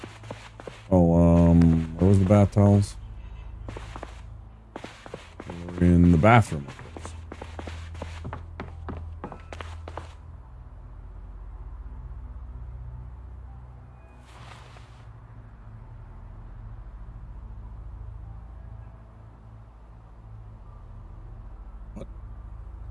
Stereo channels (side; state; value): both; identical; correlation 1.00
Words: Oh, where was the bath towels? We're in the bathroom, of course.